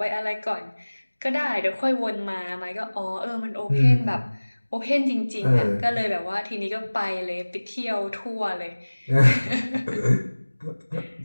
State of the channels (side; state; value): both; inverted; correlation -1.00